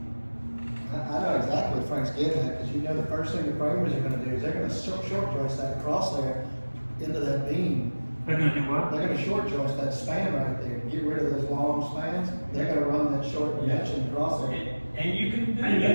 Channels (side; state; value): both; inverted; correlation -1.00